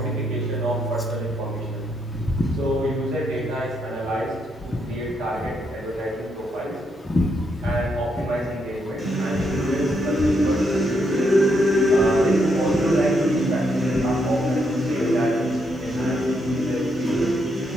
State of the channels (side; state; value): both; normal; correlation 0.77